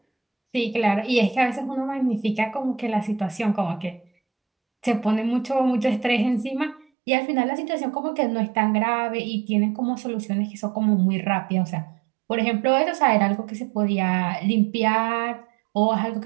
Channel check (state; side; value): drops out; left; at 6.9 s